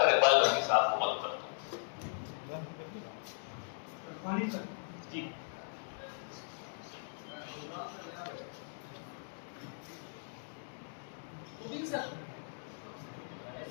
इकबाल बर्की साहब को मदऊ करता हूँ। जी सर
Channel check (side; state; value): right; silent; digital silence